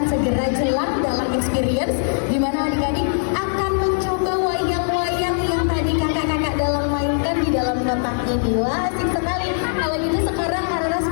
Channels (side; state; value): right; silent; 65 dB below the other